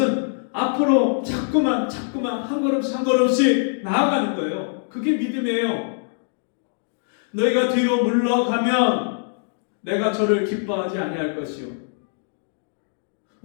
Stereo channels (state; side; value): silent; right; digital silence